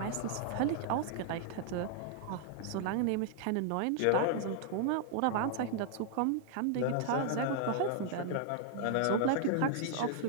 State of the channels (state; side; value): different; both; correlation -0.01